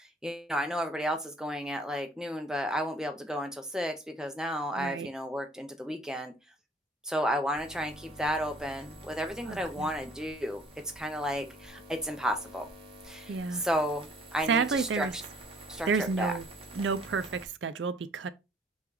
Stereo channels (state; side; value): normal; both; correlation 0.56